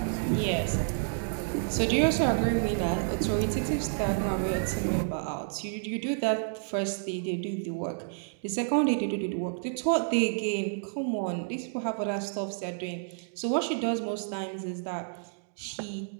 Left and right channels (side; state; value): left; silent; digital silence